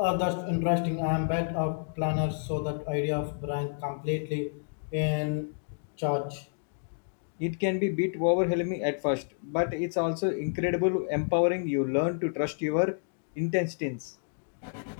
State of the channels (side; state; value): right; silent; digital silence